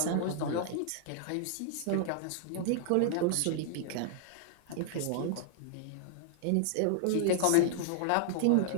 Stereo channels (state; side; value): different; both; correlation -0.01